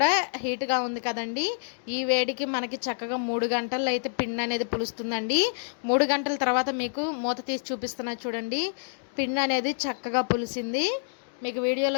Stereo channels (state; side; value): silent; right; digital silence